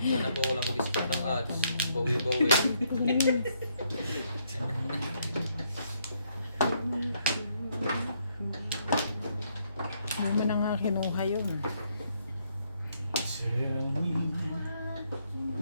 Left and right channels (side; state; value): both; inverted; correlation -0.72